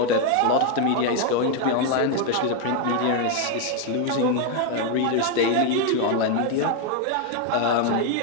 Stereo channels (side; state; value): both; different; correlation 0.01